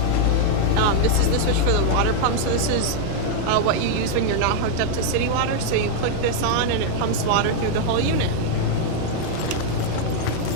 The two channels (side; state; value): both; different; correlation 0.00